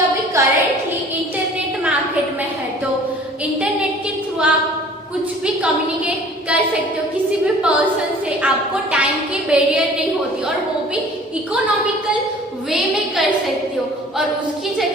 अभी करेंटली इंटरनेट मार्केट में है, तो इंटरनेट के थ्रू आप कुछ भी कम्युनिकेट कर सकते हो किसी भी पर्सन से, आपको टाइम की बैरियर नहीं होती और वो भी इकोनॉमिकल वे में कर सकते हो। और उसकी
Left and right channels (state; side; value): normal; both; correlation 0.49